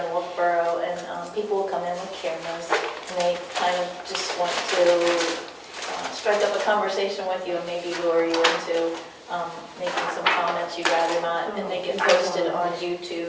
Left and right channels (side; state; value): both; identical; correlation 1.00